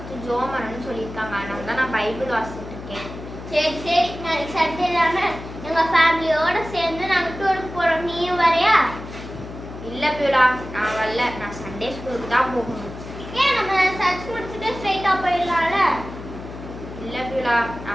ஜோமன்னு சொல்லியிருக்காங்க. அதனால தான் நான் பைபிள் வாசிச்சுட்டு இருக்கேன். சரி சரி, நாளைக்கு சண்டே தானே, எங்க ஃபேமிலியோட சேர்ந்து நாங்கள் டூருக்கு போறோம். நீயும் வரையா? இல்ல பியூலா, நான் வரல. நான் சண்டே ஸ்கூலுக்கு தான் போகணும். ஏன் நம்ம சர்ச் முடிச்சுட்டு ஸ்ட்ரைட்டா போயிடலாம்ல? இல்ல பியூலா,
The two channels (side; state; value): left; noise; hum, 12 dB below the sound